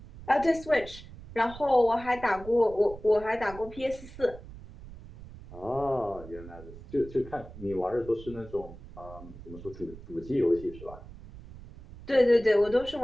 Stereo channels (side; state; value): right; noise; rumble, 16 dB below the sound